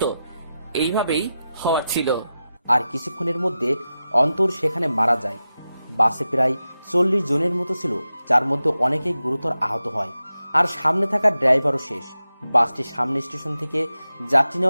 এইভাবেই হওয়ার ছিল। আর কিছুক্ষণের মধ্যে অন্তর সেখানে মারা যায়। বাসে প্রায় 40 জনের মতো ছিল, যার মধ্যে অনেকেই গুরুতর আহত হয়। আর সামনে থাকা ড্রাইভারও শেষ। বাসটি সামনে স্টেশন থেকে যাত্রী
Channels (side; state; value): both; inverted; correlation -0.92